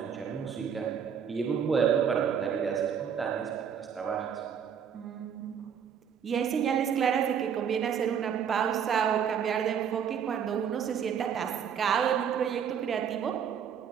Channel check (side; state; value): left; quieter; 7.8 dB